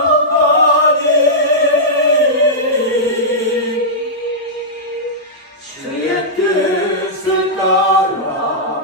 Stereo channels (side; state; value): both; normal; correlation -0.11